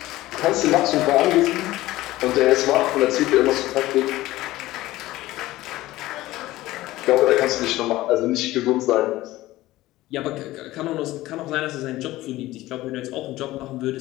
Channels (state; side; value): quieter; right; 17.0 dB